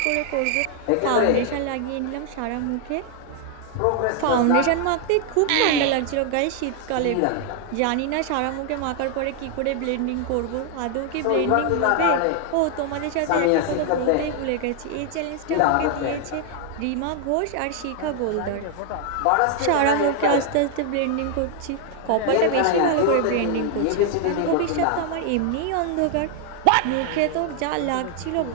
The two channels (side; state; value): both; different; correlation 0.00